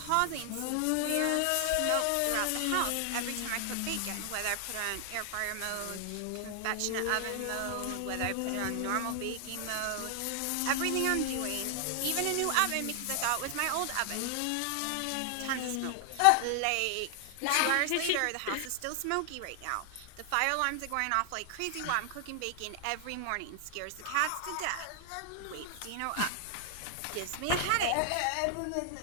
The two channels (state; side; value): different; both; correlation 0.00